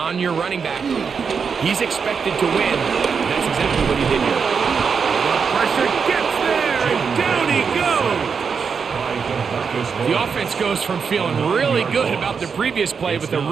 your running back, he's expected to win, and that's exactly what he did here. The pressure gets there, and down he goes. The offense goes from feeling really good about the previous play with a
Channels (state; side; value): quieter; left; 5.9 dB